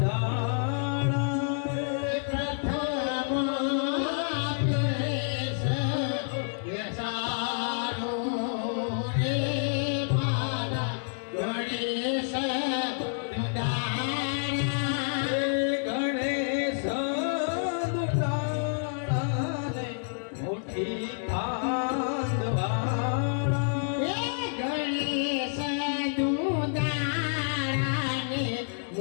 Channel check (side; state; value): right; silent; 59 dB below the other